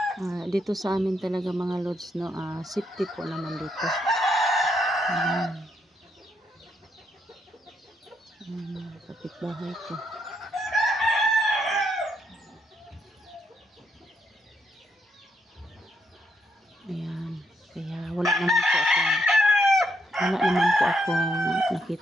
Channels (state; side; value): normal; both; correlation 0.76